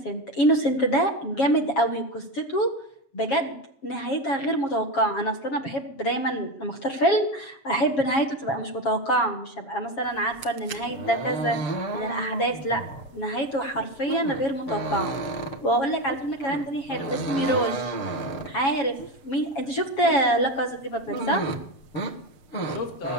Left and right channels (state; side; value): late; right; 7.3 ms